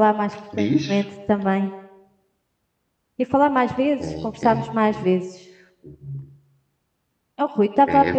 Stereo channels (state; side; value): identical; both; correlation 1.00